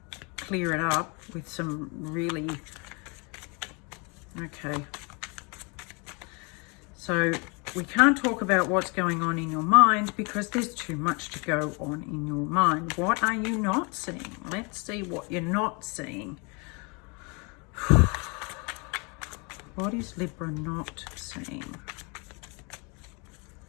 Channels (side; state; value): right; quieter; 31.7 dB